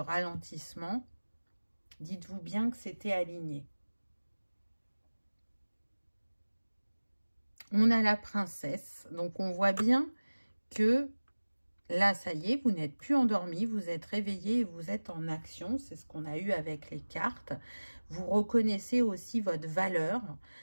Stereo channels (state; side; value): inverted; both; correlation -1.00